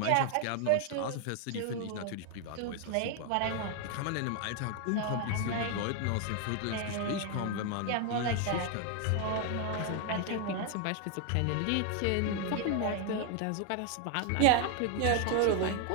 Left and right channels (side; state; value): both; different; correlation 0.00